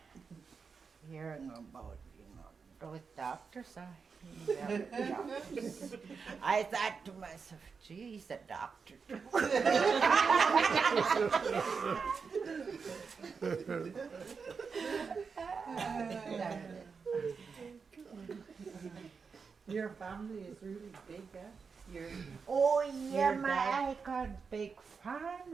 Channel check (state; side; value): quieter; left; 5.4 dB